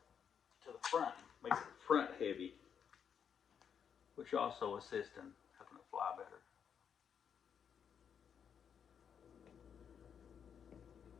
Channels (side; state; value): right; quieter; 7.6 dB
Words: to the front. Makes it front heavy, which also assists in helping it fly better.